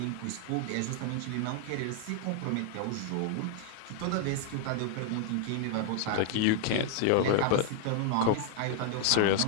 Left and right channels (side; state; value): both; different; correlation 0.00